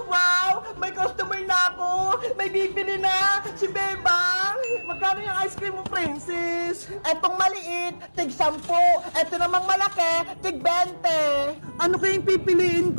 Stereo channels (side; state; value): both; inverted; correlation -1.00